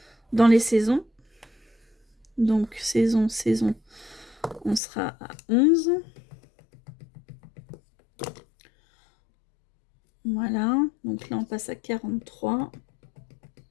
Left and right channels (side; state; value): right; drops out; at 4.8 s